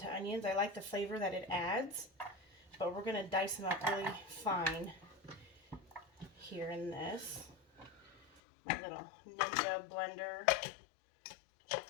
onions. I like the flavor that it adds, but we're going to dice them up really fine here in this. My little Ninja blender.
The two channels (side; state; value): right; drops out; at 8.4 s